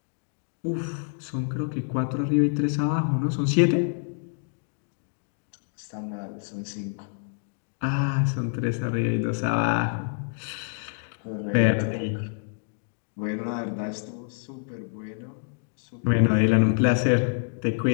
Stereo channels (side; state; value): right; silent; digital silence